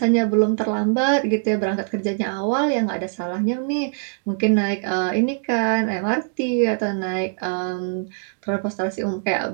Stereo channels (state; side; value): silent; left; digital silence